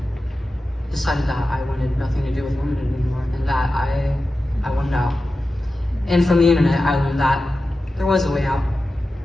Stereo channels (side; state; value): both; normal; correlation 0.93